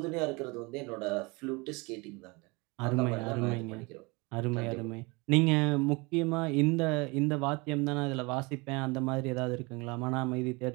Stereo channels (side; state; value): left; quieter; 26.8 dB